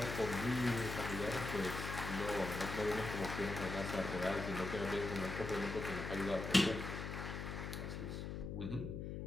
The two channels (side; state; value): left; noise; hum, 5 dB below the sound